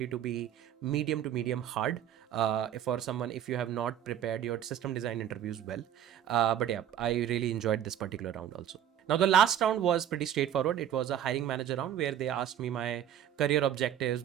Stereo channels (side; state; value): left; quieter; 10.2 dB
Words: to be medium to medium hard for someone if you have not prepared your system design interviews well. But yeah, I really enjoyed this particular round also. Now, the last round was pretty straightforward. It was a hiring manager round where they asked me my career objectives,